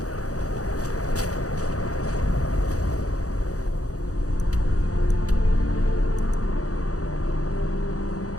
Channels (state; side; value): late; right; 0.66 ms